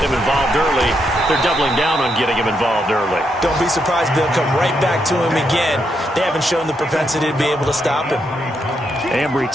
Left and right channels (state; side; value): normal; both; correlation 0.80